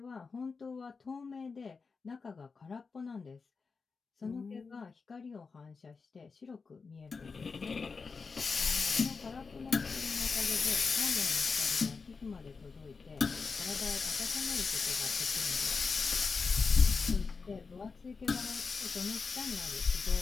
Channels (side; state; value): right; quieter; 4.8 dB